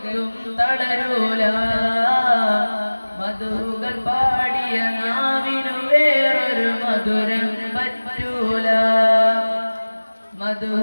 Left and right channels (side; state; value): both; inverted; correlation -1.00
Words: തളരൂല. മധുകൾ പാടിയ നാവിനു വേറൊരു മധുരം പറ്റൂല.